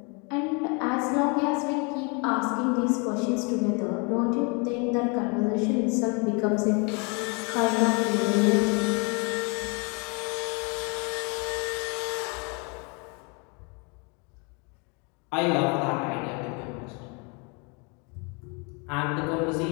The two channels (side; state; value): right; quieter; 32.9 dB